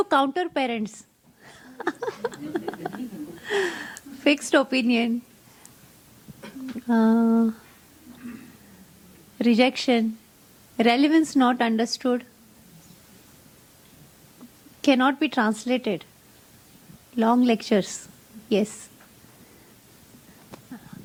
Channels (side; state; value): both; identical; correlation 1.00